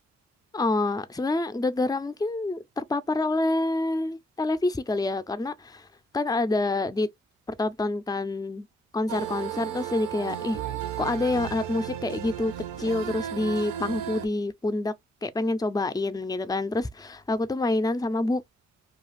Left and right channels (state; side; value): normal; both; correlation 0.74